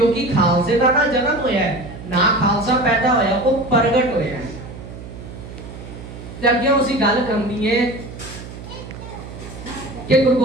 ਖਾਲਸੇ ਦਾ ਨਾ ਜਨਮ ਹੋਇਆ ਹੈ, ਨਾ ਖਾਲਸਾ ਪੈਦਾ ਹੋਇਆ, ਉਹ ਪ੍ਰਗਟ ਹੋਇਆ ਹੈ। ਤੇ ਅੱਗੇ ਅਸੀਂ ਗੱਲ ਕਰਨੀ ਹੈ ਕਿ ਗੁਰੂ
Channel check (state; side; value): noise; right; hum, 13 dB below the sound